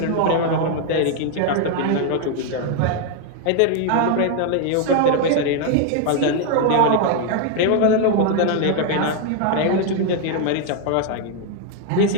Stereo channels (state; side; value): different; both; correlation 0.00